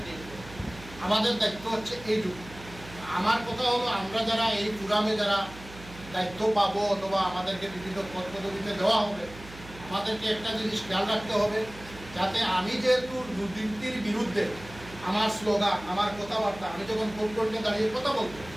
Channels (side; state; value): right; noise; hum, 17 dB below the sound